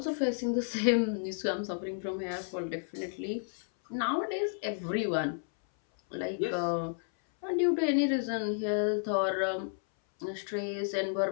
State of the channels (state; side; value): silent; right; 57 dB below the other